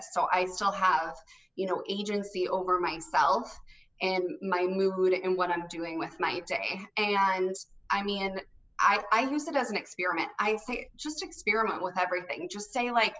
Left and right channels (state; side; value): identical; both; correlation 1.00